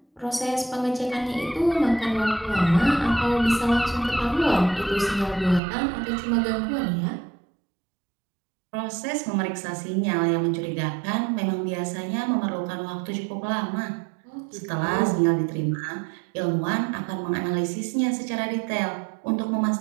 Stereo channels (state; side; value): drops out; left; at 5.6 s